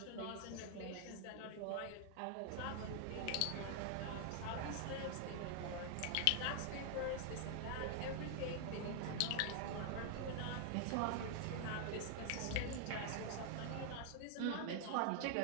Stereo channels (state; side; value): different; both; correlation 0.00